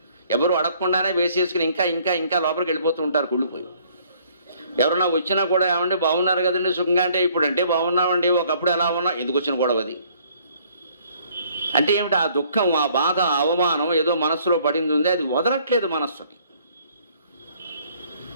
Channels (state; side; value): inverted; both; correlation -0.61